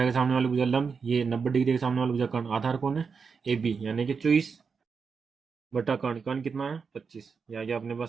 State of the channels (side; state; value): left; quieter; 5.5 dB